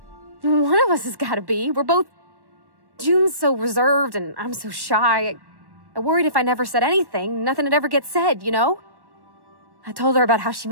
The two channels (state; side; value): late; left; 1.1 ms